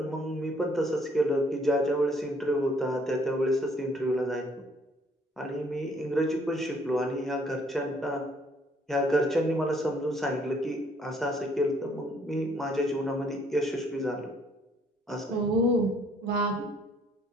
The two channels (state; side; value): normal; both; correlation 0.64